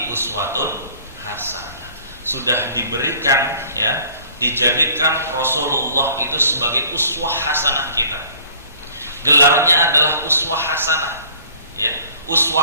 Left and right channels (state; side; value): inverted; both; correlation -0.52